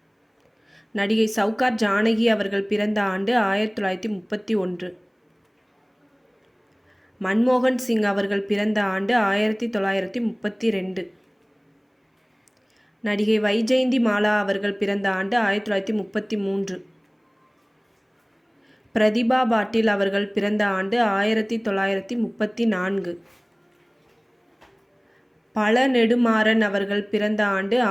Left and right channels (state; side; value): identical; both; correlation 1.00